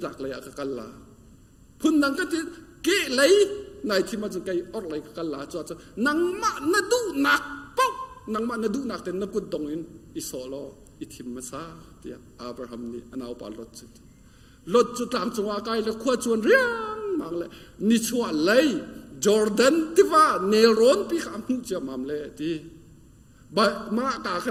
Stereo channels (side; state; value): both; identical; correlation 1.00